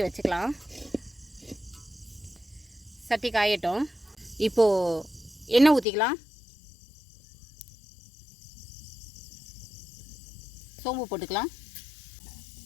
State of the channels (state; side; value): drops out; right; at 5.9 s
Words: வச்சுக்கலாம். சட்டி காயட்டும். இப்போது எண்ணெய் ஊற்றிக்கலாம். சோம்பு போட்டுக்கலாம்.